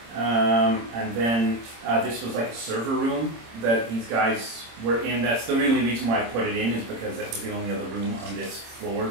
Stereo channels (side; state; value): left; late; 26 ms